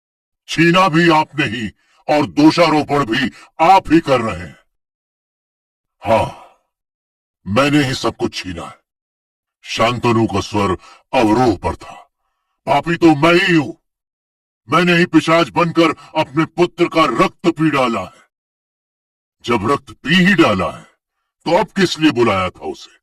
छीना भी आपने ही और दोषारोपण भी आप ही कर रहे हैं। हाँ, मैंने ही सब कुछ छीना है। शांतनु का स्वर अवरोह पर था। पापी तो मैं ही हूं। मैंने ही पिशाच बनकर अपने पुत्र का रक्त पी डाला है। जब रक्त पी ही डाला है तो अब किस लिए बुलाया था उसे?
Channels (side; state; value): both; identical; correlation 1.00